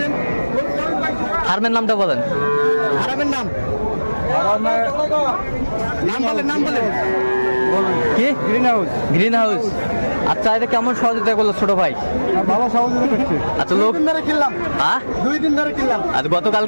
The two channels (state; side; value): inverted; both; correlation -1.00